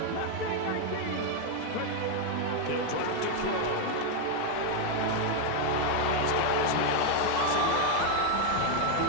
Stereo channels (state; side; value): different; both; correlation 0.01